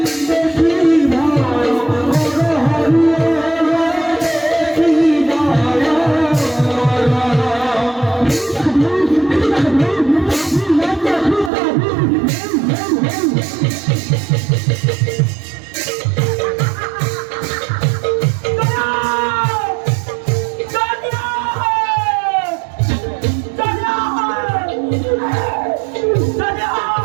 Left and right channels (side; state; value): left; drops out; at 11.5 s